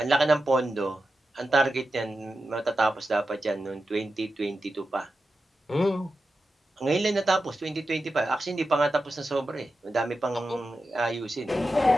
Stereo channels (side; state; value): both; normal; correlation 0.91